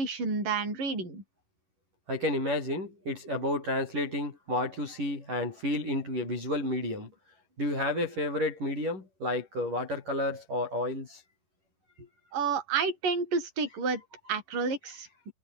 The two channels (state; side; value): late; left; 10 ms